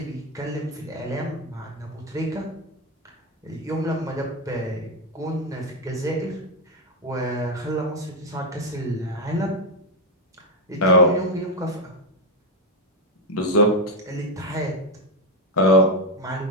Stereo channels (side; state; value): both; normal; correlation 0.07